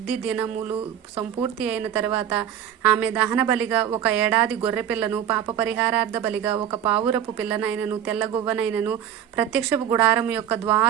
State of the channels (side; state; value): left; quieter; 9.9 dB